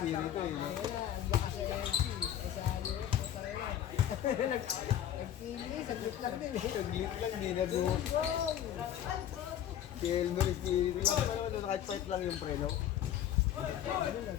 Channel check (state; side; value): quieter; right; 10.6 dB